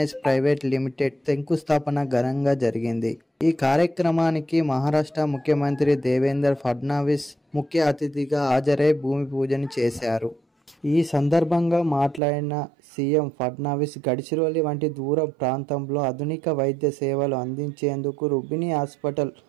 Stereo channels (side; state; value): left; drops out; at 12.2 s